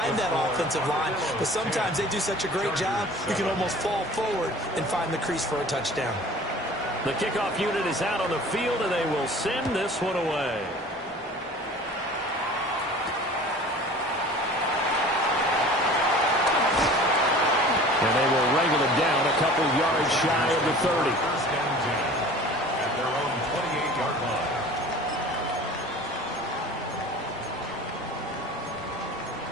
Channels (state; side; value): normal; both; correlation 0.44